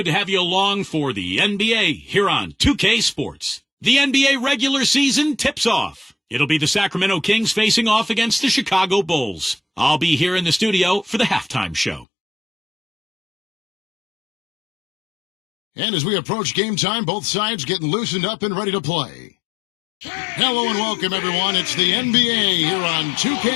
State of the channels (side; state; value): right; drops out; at 12.1 s